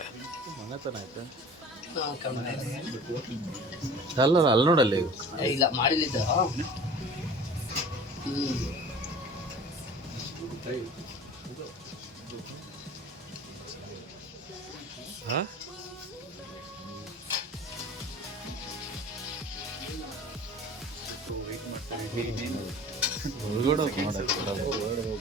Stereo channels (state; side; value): normal; both; correlation 0.42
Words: ಅಲ್ಲ ಅಲ್ಲಿ ನೋಡಲ್ಲಿ ಇಲ್ಲ ಮಾಡಿಲ್ಲಿದ್ದ